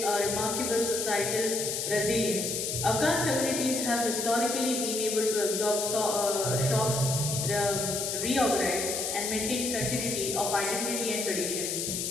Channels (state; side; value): noise; left; hiss, 2 dB below the sound